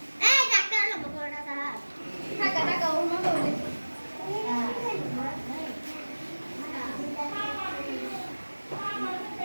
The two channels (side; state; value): both; inverted; correlation -1.00